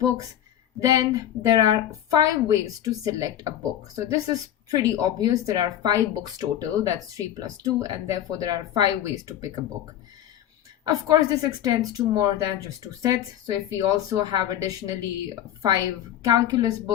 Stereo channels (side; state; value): right; quieter; 11.4 dB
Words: then there are 5 ways to select a book. So this is pretty obvious. There are 5 books total, that's 3 plus 2, and therefore there are 5 ways to pick a book. Of course, this extends to more than just 2 sets. So if we also have additionally 5 calculus